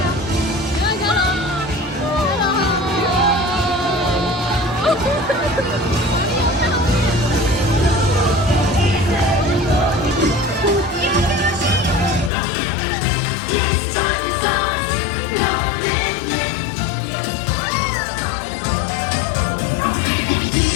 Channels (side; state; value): right; drops out; at 12.3 s